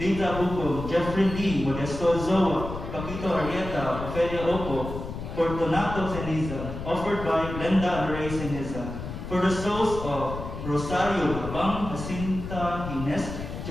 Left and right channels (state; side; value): noise; left; rumble, 8 dB below the sound